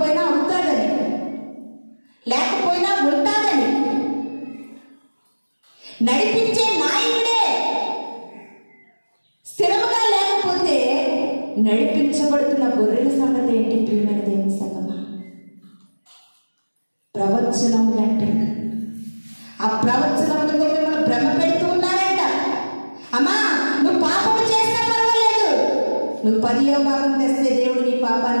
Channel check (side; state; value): both; inverted; correlation -1.00